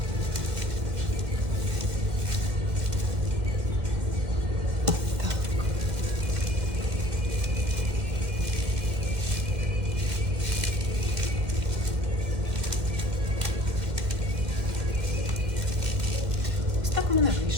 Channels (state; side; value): late; left; 2.1 ms